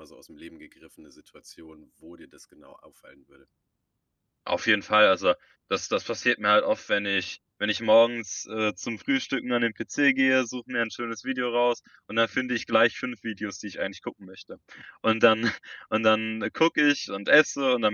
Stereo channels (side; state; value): both; identical; correlation 1.00